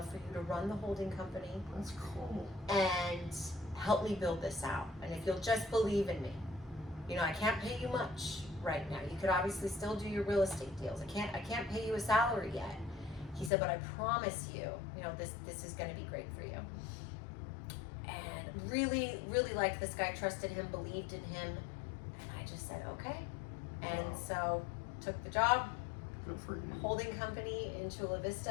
for you to run the holding company That's cool. and help me build this out. And if you'll just believe in me, you know, I can't pay you much right now. You could obviously still do your real estate deals. I can't pay you a salary yet. He said, but I promise you, you know, this is going to be great for you. And really, really liked this guy, trusted him, believed in him. And I just said, okay. And Wow. so took the job, Good for you. holding company in Chula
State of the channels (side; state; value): right; drops out; at 13.5 s